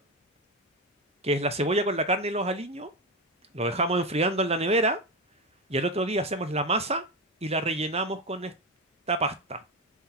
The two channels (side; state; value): both; normal; correlation 0.14